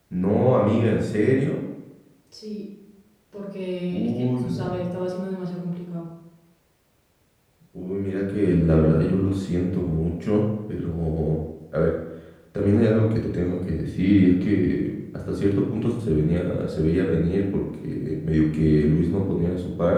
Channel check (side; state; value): both; identical; correlation 1.00